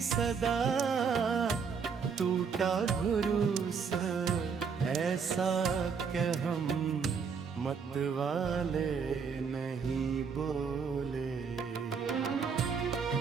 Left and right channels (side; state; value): left; quieter; 6.0 dB